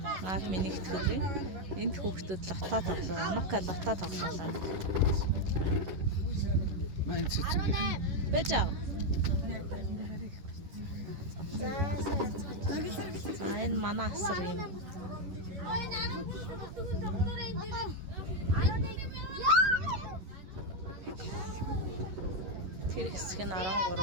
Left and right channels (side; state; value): left; late; 11 ms